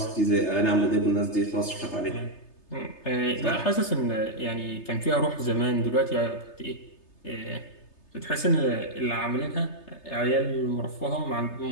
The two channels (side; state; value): right; late; 3.3 ms